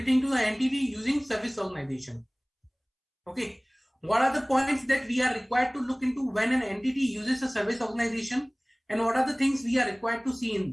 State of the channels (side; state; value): both; identical; correlation 1.00